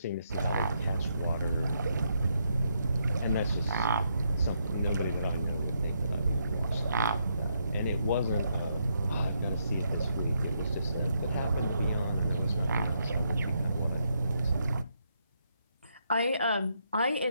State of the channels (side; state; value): both; inverted; correlation -0.78